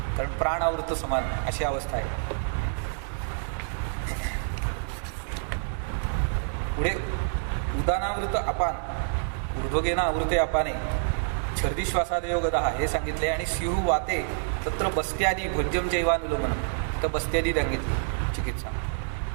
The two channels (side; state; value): left; silent; 60 dB below the other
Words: कारण प्राणावृत समान अशी अवस्था आहे. पुढे उदानावृत अपान, ऊर्ध्वगेना आवृते अपाने छर्दी श्वासादयो गदा हे सांगितले. आणि स्युः वाते तत्र बस्त्यादी भोज्यम जैवानुलोमन, तर बस्त्यादी सांगितली चिकित्सा.